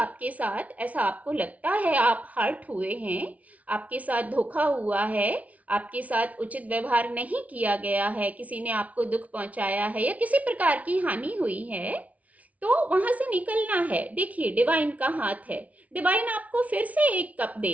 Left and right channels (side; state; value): left; late; 0.069 ms